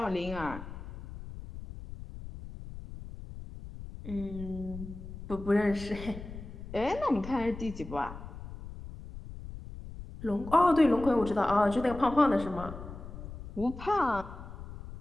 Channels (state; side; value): noise; left; rumble, 12 dB below the sound